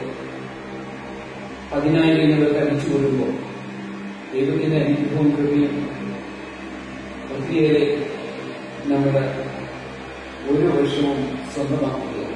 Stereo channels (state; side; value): identical; both; correlation 1.00